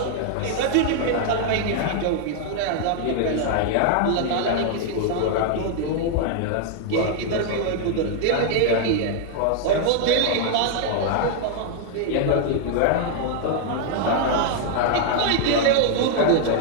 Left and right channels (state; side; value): different; both; correlation 0.00